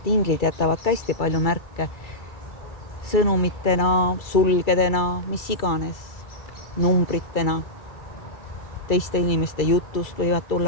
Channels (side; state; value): right; late; 2.3 ms